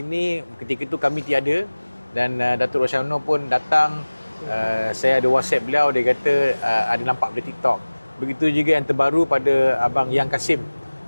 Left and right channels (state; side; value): inverted; both; correlation -1.00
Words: ketika itu kami tiada dan Datuk Rashamno pun datang. Saya ada WhatsApp beliau, dia kata ada nampak di TikTok. Begitu juga yang terbaru pada Abang Yang Kasim,